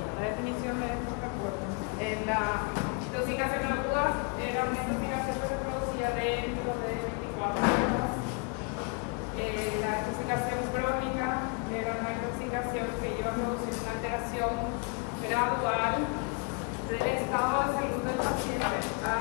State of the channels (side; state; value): right; quieter; 34.2 dB